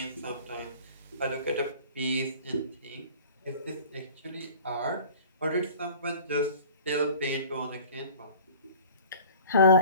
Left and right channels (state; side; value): inverted; both; correlation -0.44